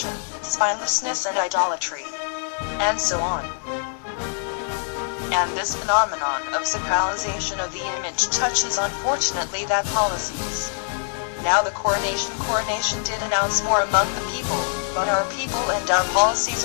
spinelessness and idolatry, and so on. And this phenomenon of sacralization of the image touches unfortunately that policies. Now the coronation did announce more among the people, but our people and our policies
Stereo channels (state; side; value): silent; right; digital silence